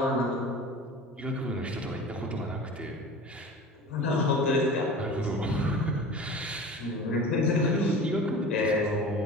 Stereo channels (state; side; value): normal; both; correlation 0.37